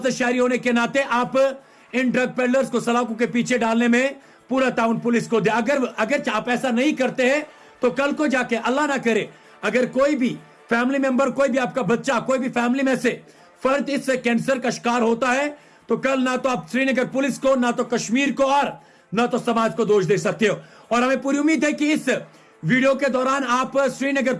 शहरी होने के नाते आप इन ड्रग पेडलर्स को सलाखों के पीछे डालने में पूरा ताउन पुलिस को दे। अगर आप ऐसा नहीं करते हैं, तो कल को जाके अल्लाह ना करे, अगर कोई भी फैमिली मेंबर, कोई भी आपका बच्चा, कोई भी फैमिली में से फर्द इस कैंसर का शिकार होता है, तो कल ना तो आप श्रीनगर पुलिस को, ना तो कश्मीर को और न तो समाज को दोष दे सकते हो। और हमें पूरी उम्मीद है कि इस वीडियो के दौरान आप श्रीनगर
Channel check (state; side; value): identical; both; correlation 1.00